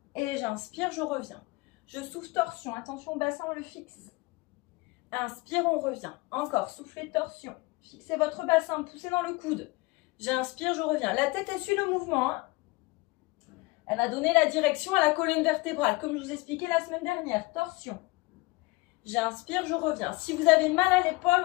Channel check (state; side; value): quieter; right; 23.7 dB